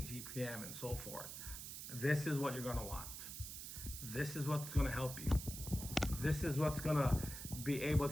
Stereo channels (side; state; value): right; noise; hiss, 8 dB below the sound